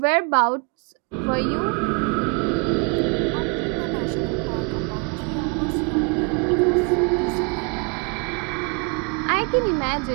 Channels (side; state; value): left; quieter; 35.4 dB